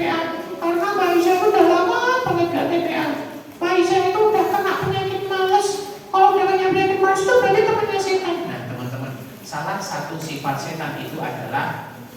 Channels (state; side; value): identical; both; correlation 1.00